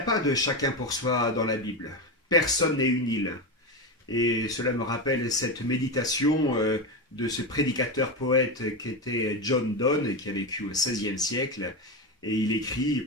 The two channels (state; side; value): normal; both; correlation 0.15